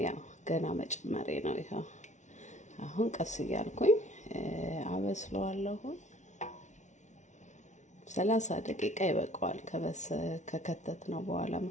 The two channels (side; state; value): right; late; 0.35 ms